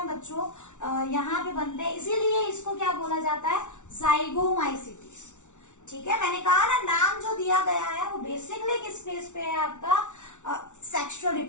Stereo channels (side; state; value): right; late; 0.85 ms